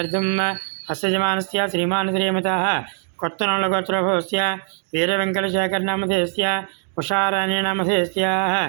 हस्यजमानस्य श्रीमान् श्रीमतः कोत्तनोळगोत्रभवस्य वीरवेङ्कटशेखरनामधेयस्य उषाराणीनामधेयस्याः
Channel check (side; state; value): left; silent; 58 dB below the other